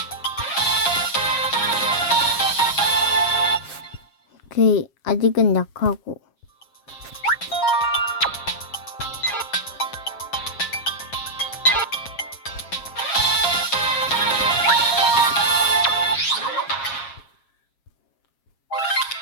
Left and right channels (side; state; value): right; late; 7.4 ms